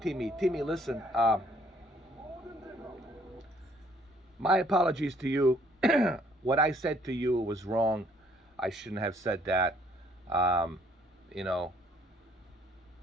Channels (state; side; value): normal; both; correlation 0.63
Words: Timmy, listen, my apologies to you. What I said to you was wrong. I shouldn't have said that. You know,